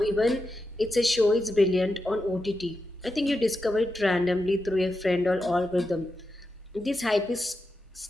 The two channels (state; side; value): normal; both; correlation 0.88